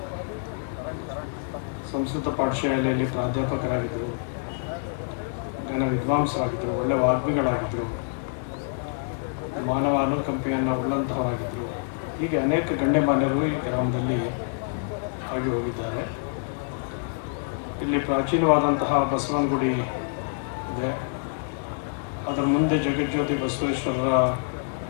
ಸಂಸ್ಕೃತ ಪಾಠಶಾಲೆಯಲ್ಲಿ ಪ್ರಾಧ್ಯಾಪಕರಾಗಿದ್ದರು, ಜನ ವಿದ್ವಾಂಸರಾಗಿದ್ದರು, ಒಳ್ಳೆ ವಾಗ್ಮಿಗಳಾಗಿದ್ದರು, ಮಾನವ ಅನುಕಂಪೆಯನ್ನು ಉಳ್ಳಂತಹವಾಗಿದ್ದರು. ಹೀಗೆ ಅನೇಕ ಗಣ್ಯಮಾನ್ಯರು ಈ ಗ್ರಾಮದಲ್ಲಿ ಆಗಿ ಹೋಗಿದ್ದಾರೆ. ಇಲ್ಲಿ ಪ್ರಾಚೀನವಾದಂತಹ ಬಸವನ ಗುಡಿ ಇದೆ. ಅದರ ಮುಂದೆ ಜಗಜ್ಯೋತಿ ಬಸವೇಶ್ವರರ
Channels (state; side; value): silent; right; digital silence